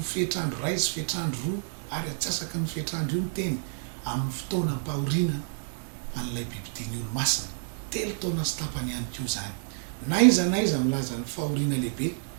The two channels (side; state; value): left; silent; digital silence